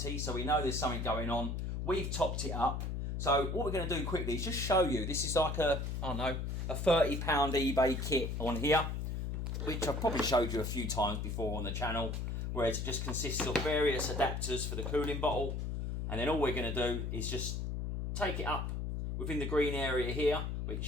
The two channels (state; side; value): noise; left; hum, 2 dB below the sound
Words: so we know there's something going on. We've topped it up. So what we're going to do quickly is just show you. This is like a, I don't know, a £30 eBay kit on here, which I've probably showed you a few times before on the channel, where it just consists of various adapters for the cooling bottle. And then all we're going to do is just take it up within the green area here,